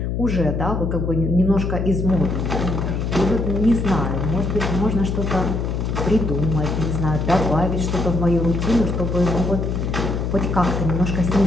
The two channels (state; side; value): noise; left; hum, 1 dB below the sound